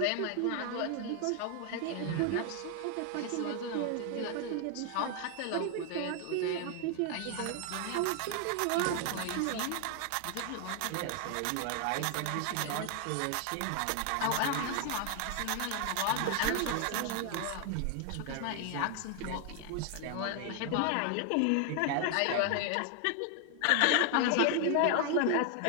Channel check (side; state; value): both; different; correlation 0.01